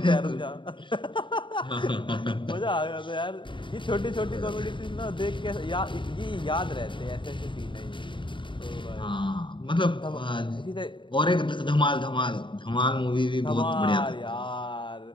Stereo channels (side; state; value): right; late; 0.24 ms